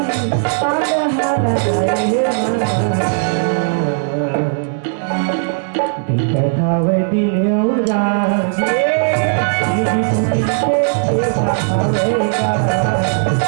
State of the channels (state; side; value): silent; left; digital silence